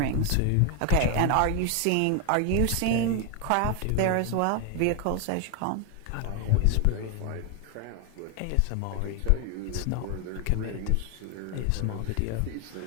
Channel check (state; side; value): different; both; correlation 0.01